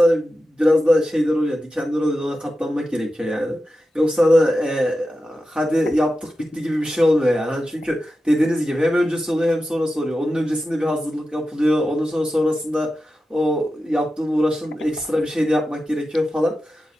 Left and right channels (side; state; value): both; normal; correlation 0.92